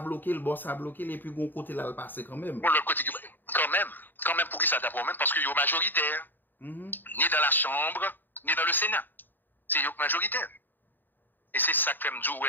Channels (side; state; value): right; late; 0.091 ms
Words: bloquer, le boss a bloqué et puis gon côté là le passer quand même. Bon, le côté quand même pour qui ça d'abord même parce que yo majoritaire. Ni dans la chambre, ni dans le Sénat. C'est yo majoritaire. Et c'est ça que me dit